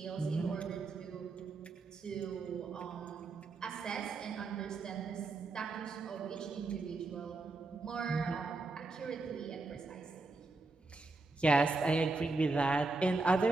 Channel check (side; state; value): left; quieter; 3.5 dB